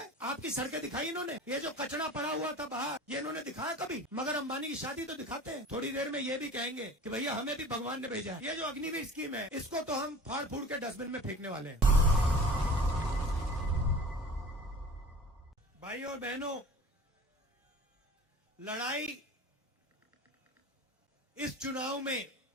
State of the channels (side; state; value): both; normal; correlation 0.40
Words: आपकी सड़कें दिखाई इन्होंने? ये जो कचरा पड़ा हुआ था बाहर ये इन्होंने दिखाया कभी? मगर अंबानी की शादी तो दिखाते हैं। थोड़ी देर में ये भी कहेंगे कि भैया हमें भी भगवान ने भेजा है। ये जो अग्निवीर स्कीम है इसको तो हम फाड़ फूड़ के डस्टबिन में फेंकने वाले हैं। भाई और बहनों, लड़ाई इस चुनाव में